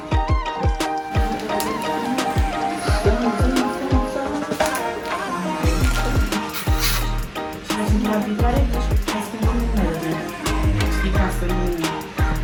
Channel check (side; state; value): both; identical; correlation 1.00